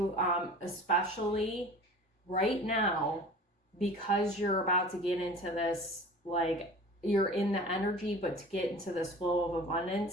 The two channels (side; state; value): both; normal; correlation 0.41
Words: especially right now, because you're about to get into this, like, you're in the energy, but to get into this flow of